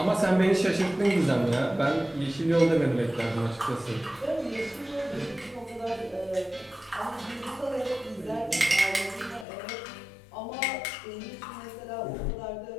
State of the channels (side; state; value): right; drops out; at 9.5 s